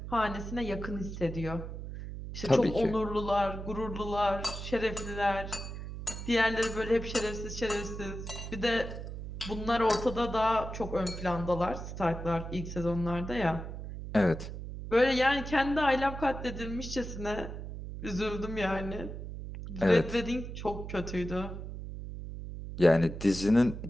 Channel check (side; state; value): right; noise; hum, 8 dB below the sound